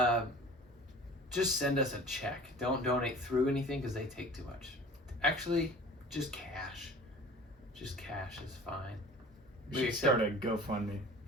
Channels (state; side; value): normal; both; correlation 0.43